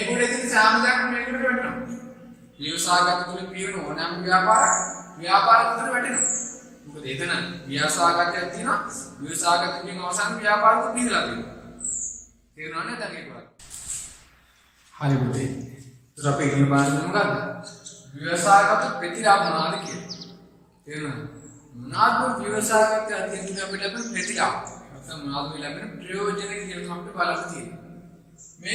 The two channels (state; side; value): identical; both; correlation 1.00